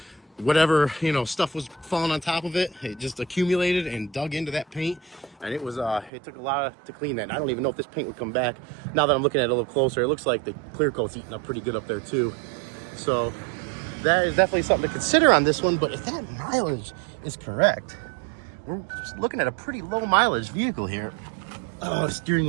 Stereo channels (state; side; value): drops out; left; at 6.1 s